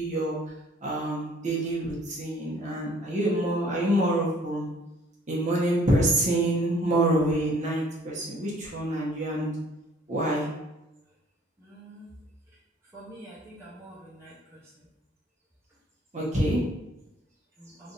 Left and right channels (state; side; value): normal; both; correlation 0.57